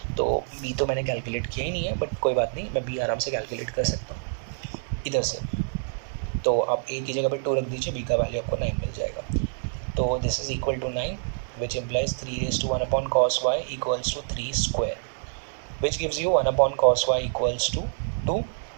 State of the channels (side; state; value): left; silent; 58 dB below the other